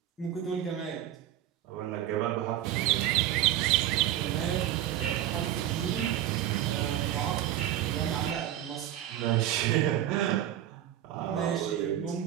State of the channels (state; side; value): quieter; left; 12.3 dB